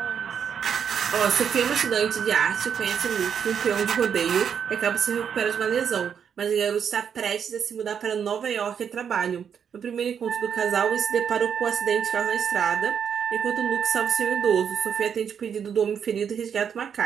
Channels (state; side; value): quieter; left; 7.6 dB